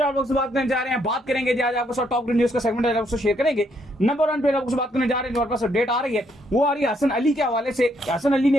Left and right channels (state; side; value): normal; both; correlation 0.72